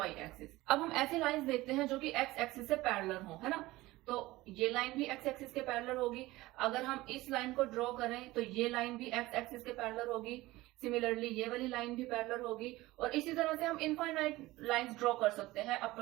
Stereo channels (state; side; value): quieter; left; 18.8 dB